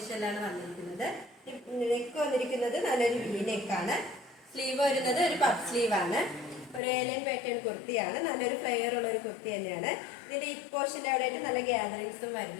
വന്നിരിക്കുന്നത്. നെക്ക് വന്നിരിക്കുന്നത് നല്ലൊരു വി നെക്കാണ്. സ്ലീവ് വരുന്നത് ഒരു പഫ് സ്ലീവ് ആണ്. ഒരു ഏലൈൻ പാറ്റേൺ കുർത്തിയാണ്. നല്ലൊരു ഫ്ലെയർ ഉള്ള ഒരു കുർത്തി തന്നെയാണ്. ഇതിന്റെ ഈ പോർഷൻ്റെ അവിടെ ആയിട്ട് നല്ല ഗ്യാദറിങ്സും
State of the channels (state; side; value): drops out; right; at 6.8 s